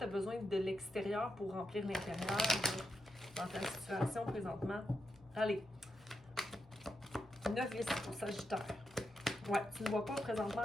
as besoin de l'extérieur pour remplir l'intérieur dans ta situation présentement? Allez. Novice pour Sagittaire. Ouais, tu ne vois pas présentement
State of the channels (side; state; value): both; normal; correlation 0.85